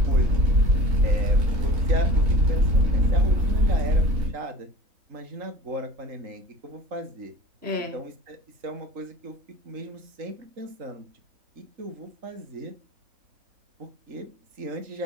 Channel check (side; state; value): left; late; 3.8 ms